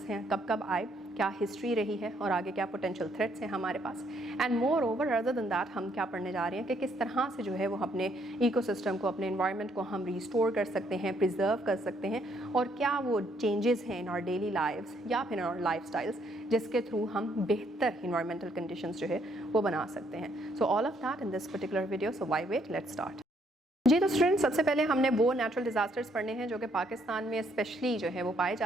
हैं, कब कब आए, क्या हिस्ट्री रही है और आगे क्या पोटेंशियल थ्रेट्स हैं हमारे पास. And moreover other than that हम क्या पढ़ने जा रहे हैं कि किस तरह से जो है वो अपने इकोसिस्टम को, अपने एनवायरनमेंट को हम रिस्टोर कर सकते हैं, प्रिजर्व कर सकते हैं, और क्या वो चेंजेस हैं इन आवर डेली लाइव्स या फिर इन आवर लाइफस्टाइल्स जिसके थ्रू हम बेहतर इन्वायरमेंटल कंडीशंस जो है वो बना सकते हैं. So all of that in this particular video. So why wait, let's start. जी तो स्टूडेंट्स, सबसे पहले हमने वो नेचुरल डिज़ास्टर्स पढ़ने हैं जो कि पाकिस्तान में स्पेशली जो है वो पाए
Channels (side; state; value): both; normal; correlation 0.69